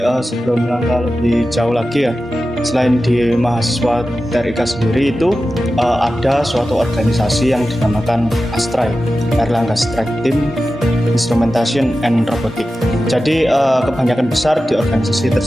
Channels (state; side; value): normal; both; correlation 0.93